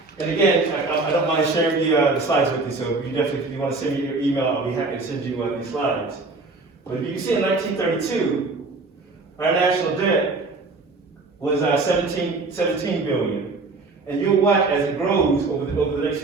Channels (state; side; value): quieter; left; 3.6 dB